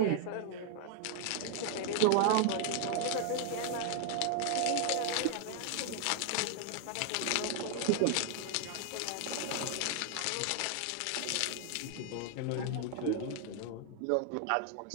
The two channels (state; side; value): different; both; correlation 0.00